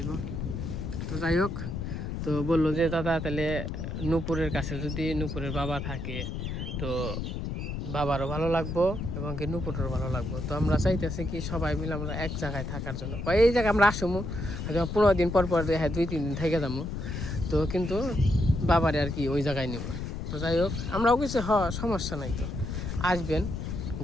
তো যাই হোক, তো বললো যে দাদা তাহলে নূপুরের কাছে যদি নূপুরের বাবা থাকে তো বাবারও ভালো লাগবো এবং কি নূপুরেরও ভালো লাগবো। তো আমরা চাইতেছি কি সবাই মিলে আমরা এক জায়গায় থাকার জন্য, এই জায়গায় আমরা আসবো হয়তো 15 দিন পর পর, হ্যাঁ 2-3 দিন থেকে যাবো, তো কিন্তু বাবারে আর কি ওই জায়গায় নেব। তো যাই হোক, আমরাও কিছু সমস্যা নাই, তো আসবেন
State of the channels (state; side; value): noise; left; rumble, 4 dB below the sound